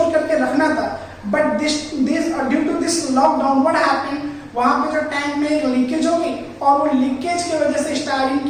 करके रखना था, but this due to this lockdown what happened, वहां पे जो टैंक में लीकेज हो गई और वो लीकेज की वजह से स्टाइरिन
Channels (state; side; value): identical; both; correlation 1.00